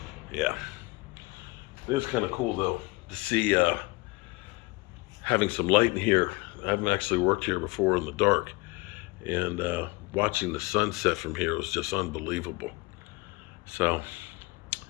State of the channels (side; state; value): right; quieter; 24.7 dB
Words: yeah. It is kind of cool though to see having some light in here. I haven't actually worked here before in the dark, and watching the sunset from here was just unbelievable. So